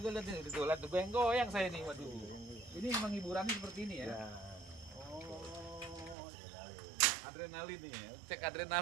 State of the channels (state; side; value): drops out; left; at 6.2 s